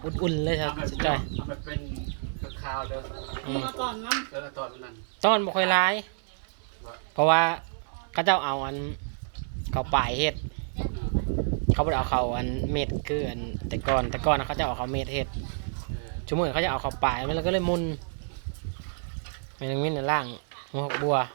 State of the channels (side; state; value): left; silent; 59 dB below the other